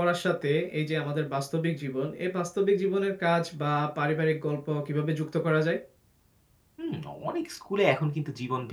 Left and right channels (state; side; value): identical; both; correlation 1.00